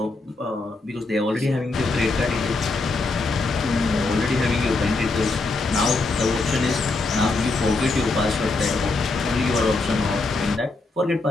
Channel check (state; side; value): quieter; right; 3.4 dB